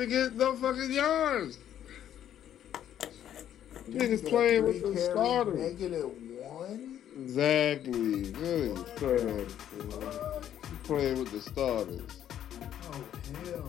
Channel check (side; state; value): right; quieter; 10.6 dB